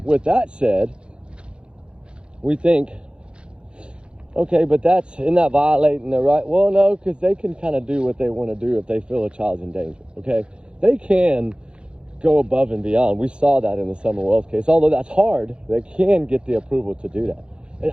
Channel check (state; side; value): late; left; 0.055 ms